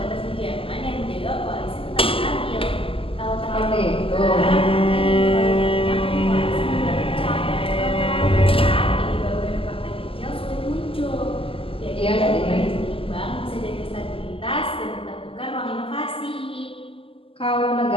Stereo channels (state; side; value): late; right; 0.26 ms